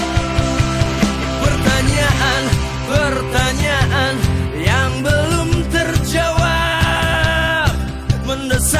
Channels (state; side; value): identical; both; correlation 1.00